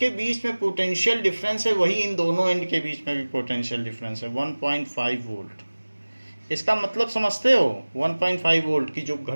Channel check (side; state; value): both; inverted; correlation -1.00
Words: बीच में पोटेंशियल डिफरेंस है, वही इन दोनों एंड के बीच में भी पोटेंशियल डिफरेंस है, 1.5 वोल्ट। इसका मतलब समझते हो, 1.5 वोल्ट की जो